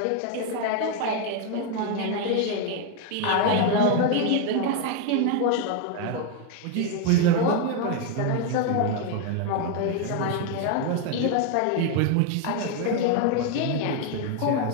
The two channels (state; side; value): different; both; correlation 0.01